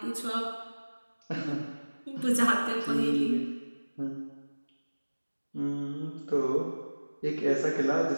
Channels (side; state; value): both; inverted; correlation -1.00